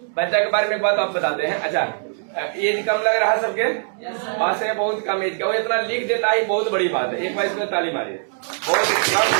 बच्चा के बारे में एक बात आप बताते हैं। अच्छा, एज कम लग रहा है सबके, बात से बहुत कम एज का, वो इतना लिख देता है, बहुत बड़ी बात है। एक बार इसमें ताली मारिए, बहुत कम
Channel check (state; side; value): silent; left; digital silence